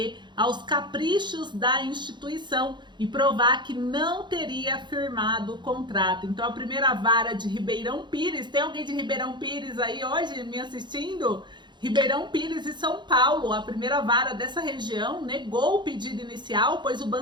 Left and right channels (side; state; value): left; late; 0.22 ms